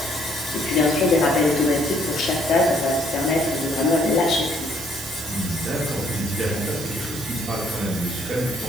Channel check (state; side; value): noise; right; hiss, 10 dB below the sound